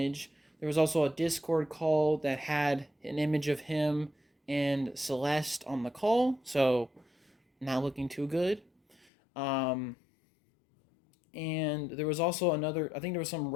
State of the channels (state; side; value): drops out; right; at 9.1 s